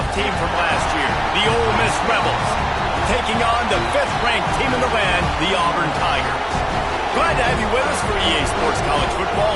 team from last year, the Ole Miss Rebels, taking on the 5th-ranked team in the land, the Auburn Tigers. Glad to have you with us for EA Sports College Football.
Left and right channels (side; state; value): both; identical; correlation 1.00